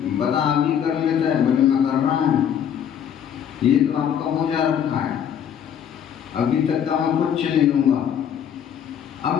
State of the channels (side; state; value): right; quieter; 8.8 dB